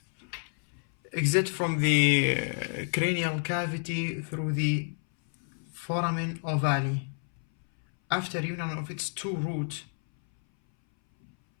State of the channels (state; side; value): silent; right; 58 dB below the other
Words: exits from the cranial cavity through the foramen ovale. After union of its two roots,